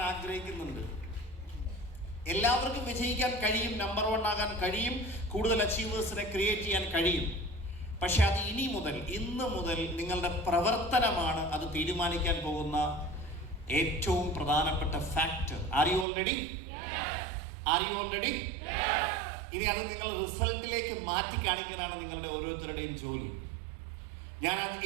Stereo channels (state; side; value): drops out; left; at 16.1 s